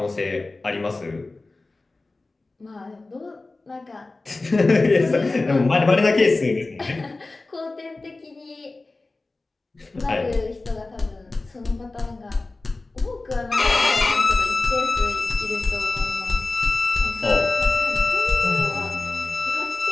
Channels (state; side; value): quieter; right; 3.3 dB